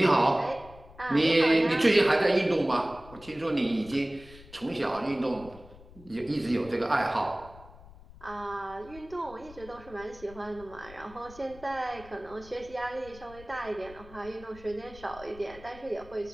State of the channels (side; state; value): left; noise; rumble, 20 dB below the sound